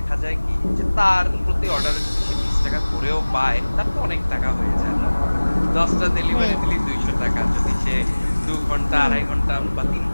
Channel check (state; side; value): inverted; both; correlation -1.00